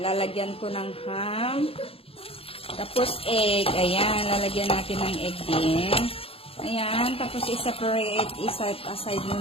lalagyan ko ng ham. Tapos egg. Ayan, lalagyan natin ng egg din. Ayan, tapos i-separate, i-set aside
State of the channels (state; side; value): late; right; 0.27 ms